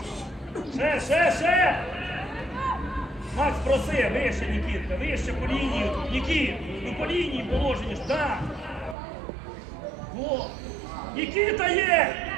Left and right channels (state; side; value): drops out; left; at 9.0 s